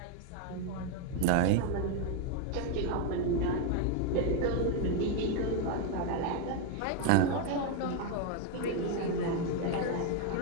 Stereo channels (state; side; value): different; both; correlation 0.01